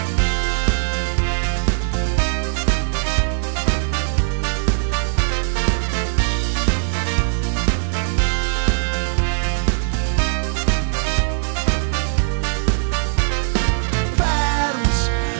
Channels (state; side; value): silent; left; digital silence